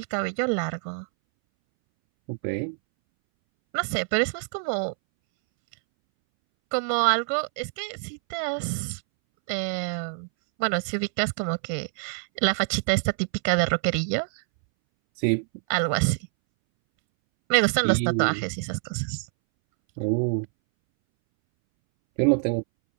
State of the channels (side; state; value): left; silent; 61 dB below the other